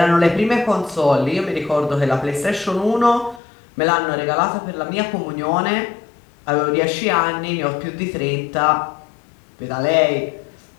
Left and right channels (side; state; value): right; drops out; at 3.4 s